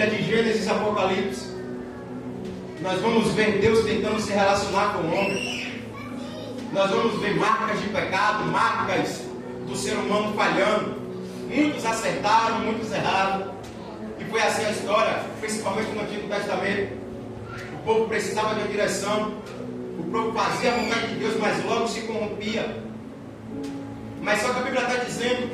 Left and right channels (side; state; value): both; identical; correlation 1.00